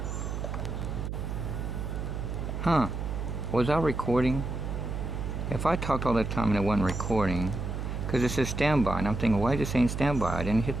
Huh? Was I recording? If I talked all that time and it wasn't recording, because it says standby, and I'm thinking, why is it saying standby? I didn't hit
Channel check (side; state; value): right; noise; hum, 4 dB below the sound